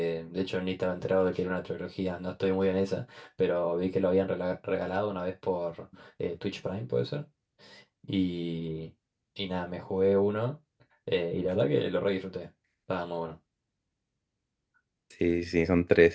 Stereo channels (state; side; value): identical; both; correlation 1.00